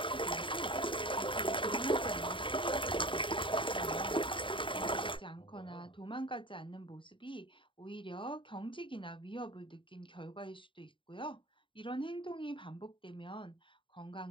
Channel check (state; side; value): late; right; 0.25 ms